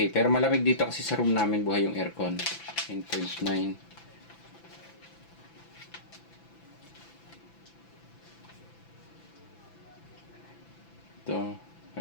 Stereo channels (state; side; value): late; right; 6.0 ms